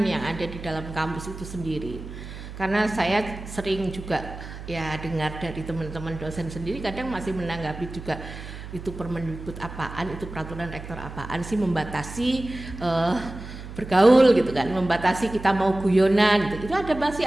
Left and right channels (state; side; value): noise; right; hum, 12 dB below the sound